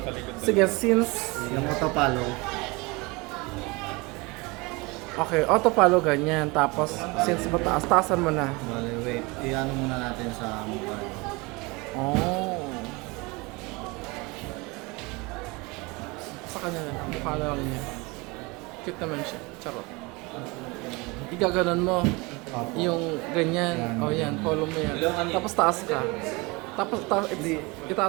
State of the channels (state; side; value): quieter; left; 25.8 dB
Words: Sige, since Yung auto-follow. okay, auto follow ganyan. Tapos, since mataas, taasan mo na. Bale, wait. I-ano muna natin sa mukha. Oh. Sa kanya na. Mukha na lang niya. Cute naman siya. Charot. Igaganon mo. Opo. Yung ganyan. O yan, follow mo yan. Tapos taas ka. Tapos